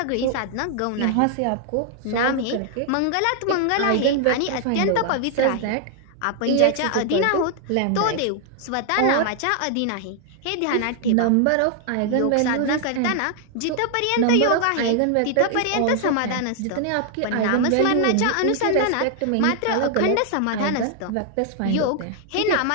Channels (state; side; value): different; both; correlation 0.00